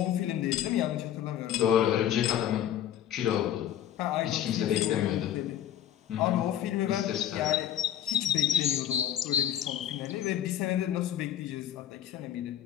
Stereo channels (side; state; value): right; quieter; 10.9 dB